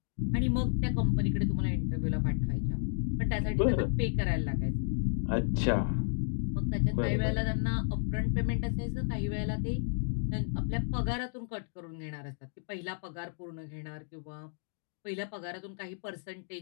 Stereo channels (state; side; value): silent; right; digital silence